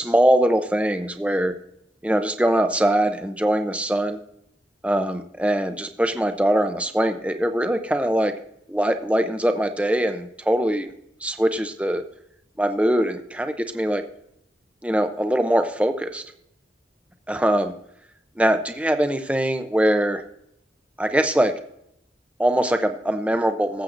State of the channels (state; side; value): normal; both; correlation 0.87